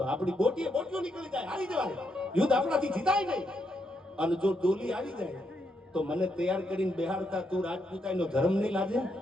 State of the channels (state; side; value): normal; both; correlation 0.79